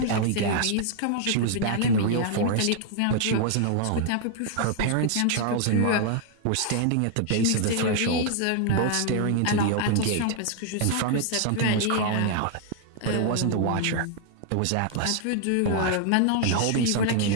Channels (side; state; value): both; different; correlation 0.00